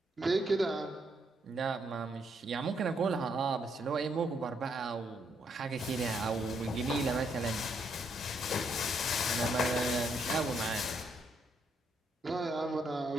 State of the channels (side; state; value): both; normal; correlation 0.75